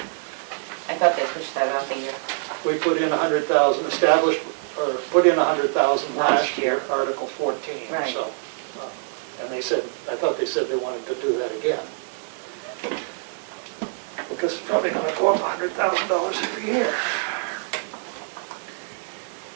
I thought they pushed that off a year. We put in 100,000 established, or put in 100,000 last Last year, year. Article 14, Right. so. And they said, I thought they said they wanted to do that again. Because it's probably gonna go up $100,000 every year.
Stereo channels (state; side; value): silent; left; digital silence